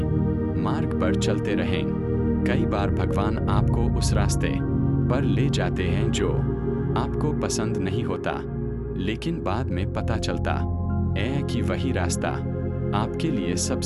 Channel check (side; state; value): both; identical; correlation 1.00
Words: मार्ग पर चलते रहें। कई बार भगवान आपको उस रास्ते पर ले जाते हैं जो आपको पसंद नहीं होता, लेकिन बाद में पता चलता है कि वही रास्ता आपके लिए